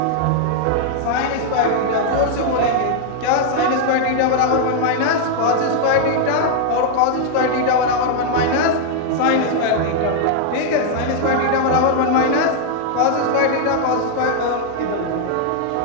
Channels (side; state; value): both; different; correlation 0.00